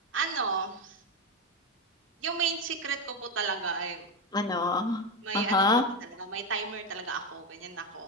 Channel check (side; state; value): both; normal; correlation 0.12